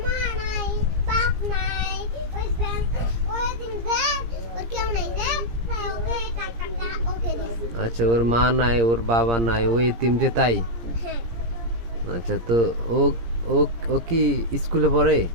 মা নাই, বাপ নাই, ওই দিন যে ওর কেউ নাই যে, তাই ওকে টাকাটা ওকে দিছি। আচ্ছা, ওর মা নাই, ওর বাবা নাই, ও এতিম যে তাই? হ্যাঁ। আচ্ছা, তো ও ও ও কি স্কুলে পড়ে?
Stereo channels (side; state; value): left; late; 17 ms